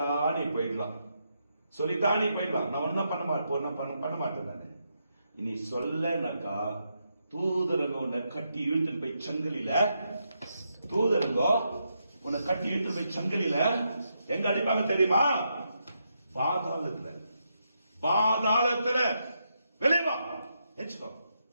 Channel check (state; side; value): inverted; both; correlation -0.82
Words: நீ போயிடலாம், சொல்லிட்டா நீ போயிடலாம். நான் ஒன்னும் பண்ண மாட்டேன். நான் இனி சொல்லனாக்கா தூதரங்க உன்னை கட்டி இழுத்துட்டு போய் சங்கிலில, தூதரங்க உன்னை கட்டி இழுத்துட்டு போய் சங்கிலில எங்க அடிப்பாங்க தெரியுமா? பாதாளத்துல. பாதாளத்துல. வெளியே வா, எச்சுக்கோ,